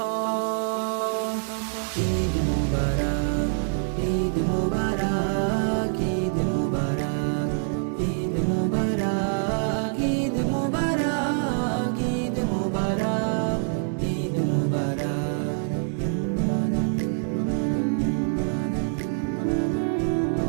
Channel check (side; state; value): left; silent; digital silence